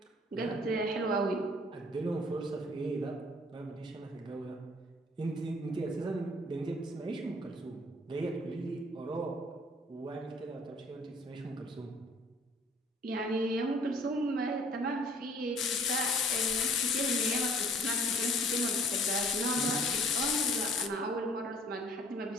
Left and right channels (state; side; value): normal; both; correlation 0.55